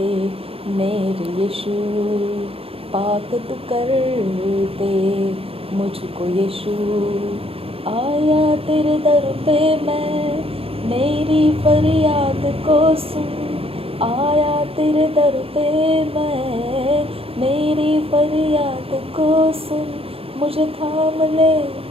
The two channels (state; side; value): late; left; 0.27 ms